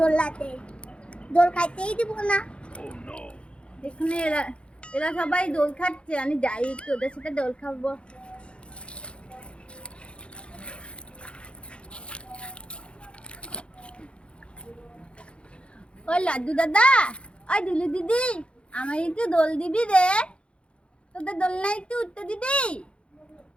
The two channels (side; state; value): right; late; 0.058 ms